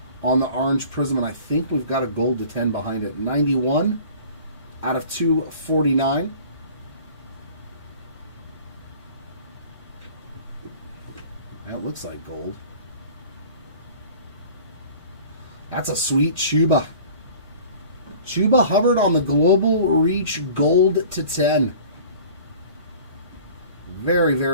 on the orange Prizm, and I think we've got a gold to 10 behind it. 91 out of 249. That looks like gold. That's a sweet Chuba. Chuba Hubbard on the Global Reach gold to 10. Very,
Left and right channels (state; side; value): inverted; both; correlation -0.45